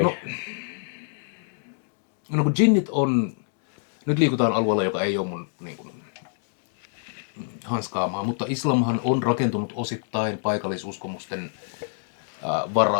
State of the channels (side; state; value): right; silent; digital silence